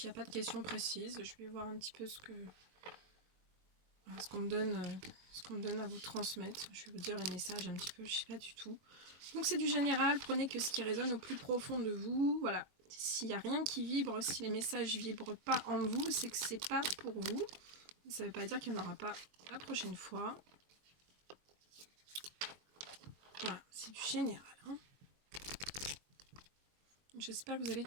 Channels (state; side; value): late; left; 21 ms